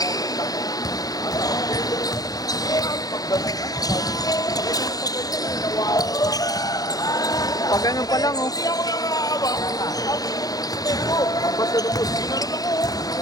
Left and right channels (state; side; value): late; right; 0.18 ms